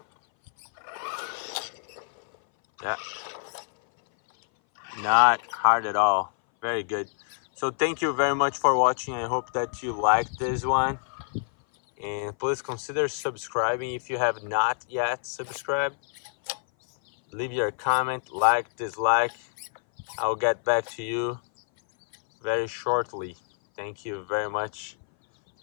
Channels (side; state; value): right; silent; 58 dB below the other